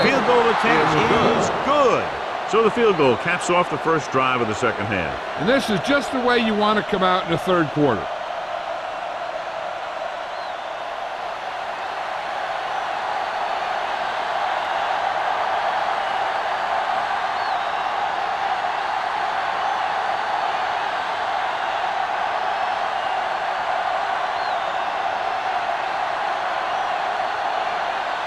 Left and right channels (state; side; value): identical; both; correlation 1.00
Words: field goal attempt is good. So the field goal caps off the first drive of the second half. And this is just the way you want to come out in the third quarter.